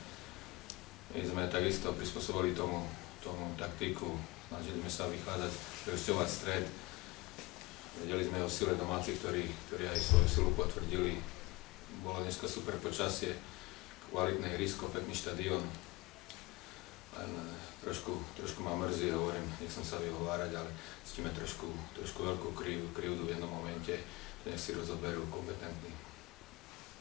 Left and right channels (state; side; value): quieter; right; 23.1 dB